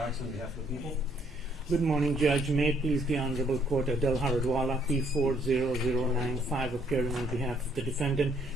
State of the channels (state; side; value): normal; both; correlation 0.67